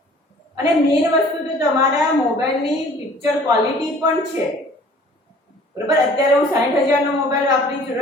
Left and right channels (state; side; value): normal; both; correlation 0.51